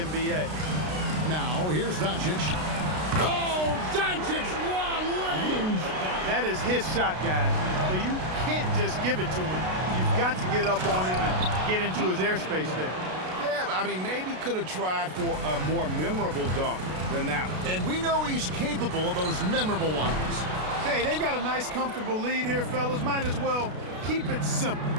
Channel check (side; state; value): left; late; 33 ms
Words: NBA. Now, here's Doncic. Oh, Doncic, long range. That is his shot, guys. So you can't just give it to him. You've got to get up on him and get into his airspace there. Yeah, I mean, maybe could have tried for a more memorable dunk than that one. And we know he's capable of those memorable ones. Hey, they've got a nice, comfortable lead here, fellas. Might as well keep it simple.